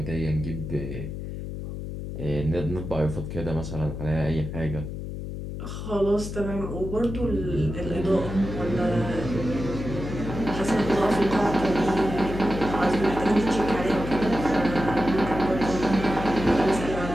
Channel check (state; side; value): noise; left; hum, 7 dB below the sound